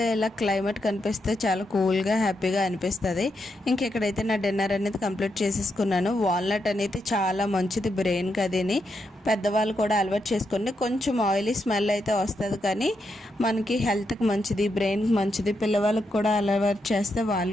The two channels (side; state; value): both; normal; correlation 0.83